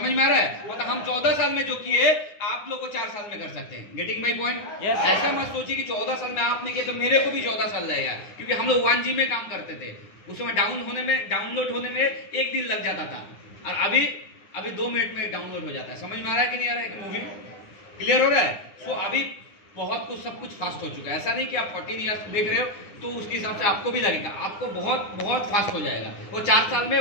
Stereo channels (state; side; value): late; right; 9.8 ms